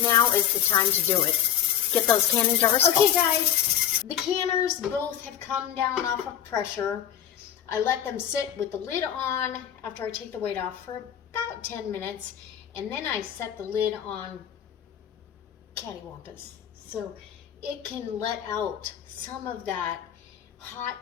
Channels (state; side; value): quieter; right; 10.0 dB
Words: now is the time to do it. Get those canning jars full. Okay, guys. The canners both have come down off of pressure. I let them sit with the lid on after I take the weight off for about 10 minutes. And then I set the lid on cattywampus, so it can let out some of that hot